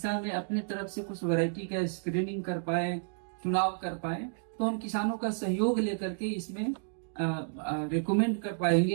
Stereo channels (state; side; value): silent; left; digital silence